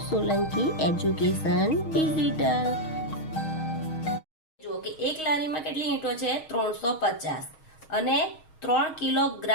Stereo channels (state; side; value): late; right; 6.4 ms